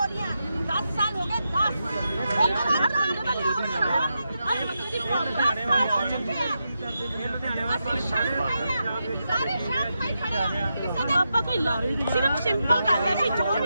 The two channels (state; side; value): inverted; both; correlation -0.87